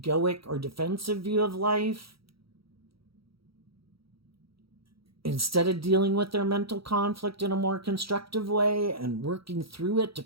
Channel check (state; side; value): late; left; 0.75 ms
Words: or defensive view of life instead of dealing with their mental conflict in a more constructive way and working through it to